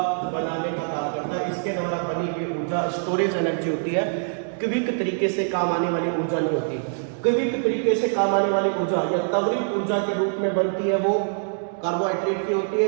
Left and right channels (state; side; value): silent; left; digital silence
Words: बनाने का काम करता है। इसके द्वारा बनी हुई ऊर्जा स्टोरेज एनर्जी होती है, क्विक तरीके से काम आने वाली ऊर्जा नहीं होती। क्विक तरीके से काम आने वाली ऊर्जा या त्वरित ऊर्जा के रूप में बनती है वो कार्बोहाइड्रेट की होती है,